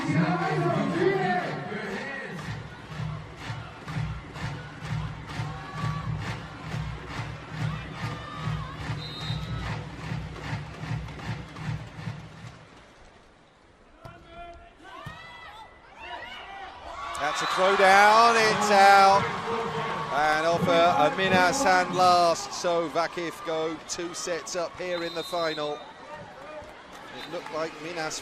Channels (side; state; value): both; identical; correlation 1.00